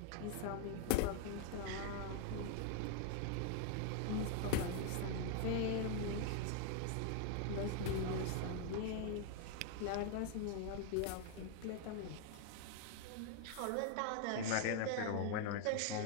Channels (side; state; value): both; different; correlation 0.00